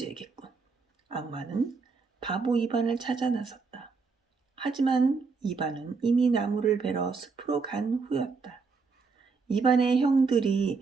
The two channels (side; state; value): left; quieter; 4.7 dB